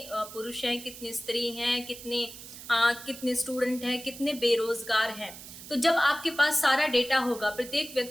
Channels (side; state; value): right; noise; hiss, 14 dB below the sound